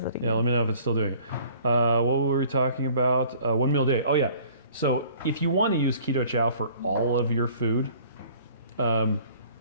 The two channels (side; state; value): both; inverted; correlation -0.52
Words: it again. Yeah, let me know if it's still doing it. What were we talking about? 1 meal a day. Oh, yeah. So if you want to use Keto Chow for all of your food,